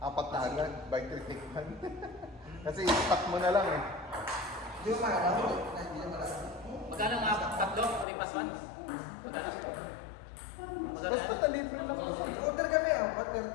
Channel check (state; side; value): drops out; right; at 8.1 s